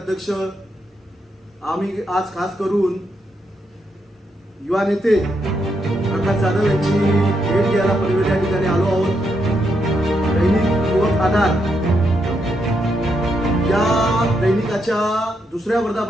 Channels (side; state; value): both; normal; correlation 0.80